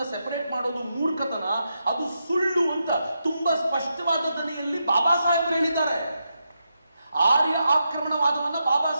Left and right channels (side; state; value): both; inverted; correlation -0.85